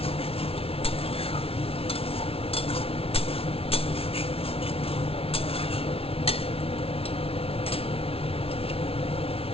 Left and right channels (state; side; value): late; right; 0.27 ms